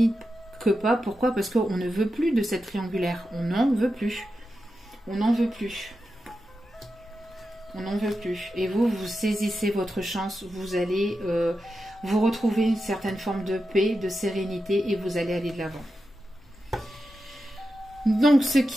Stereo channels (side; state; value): both; normal; correlation 0.90